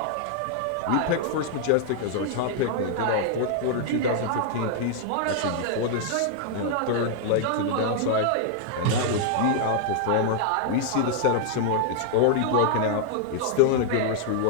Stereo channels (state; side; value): different; both; correlation -0.01